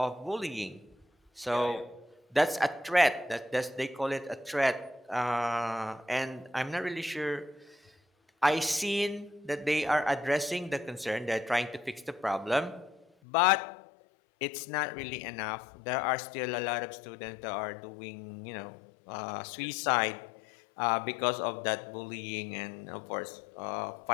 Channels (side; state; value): right; drops out; at 13.1 s